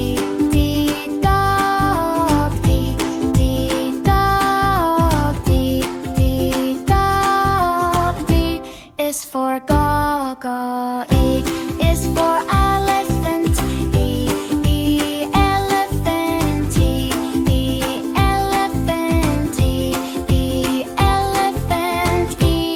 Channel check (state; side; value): identical; both; correlation 1.00